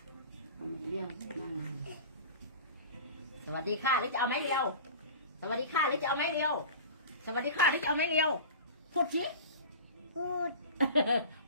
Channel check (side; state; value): both; inverted; correlation -0.35